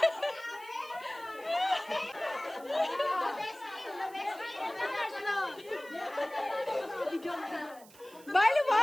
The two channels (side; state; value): right; noise; hiss, 22 dB below the sound